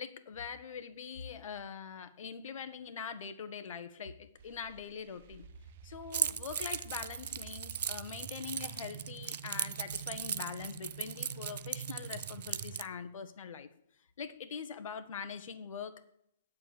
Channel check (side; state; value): both; inverted; correlation -0.45